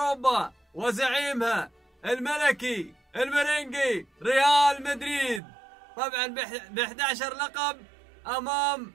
وزعيمها الملكي المرنجي ريال مدريد، طبعا ب 11 لقب امام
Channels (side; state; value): left; drops out; at 5.4 s